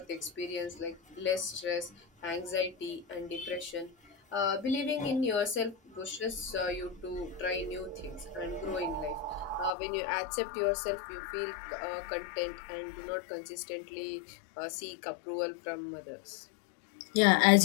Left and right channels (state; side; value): drops out; right; at 9.7 s